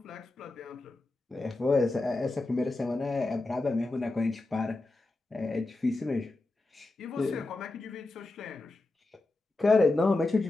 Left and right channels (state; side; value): quieter; right; 3.1 dB